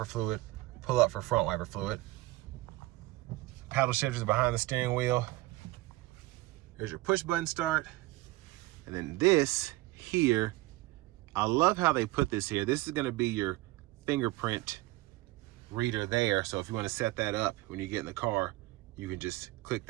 fluid, pull up for front wiper fluid. Paddle shifters behind the steering wheel. Here's your push button start. And then this here, I love how they put this here. This is gonna be your fingerprint reader there. So if you wanna set that up when you get in the car, you can just click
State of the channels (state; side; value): quieter; left; 19.5 dB